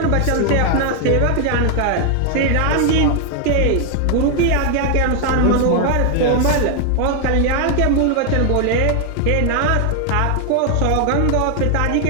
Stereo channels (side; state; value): both; different; correlation 0.00